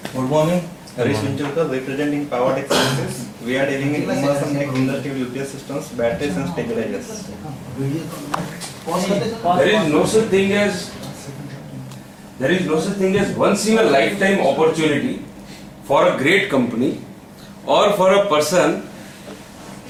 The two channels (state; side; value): identical; both; correlation 1.00